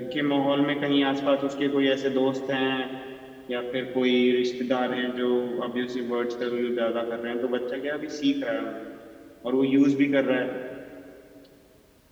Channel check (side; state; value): both; identical; correlation 1.00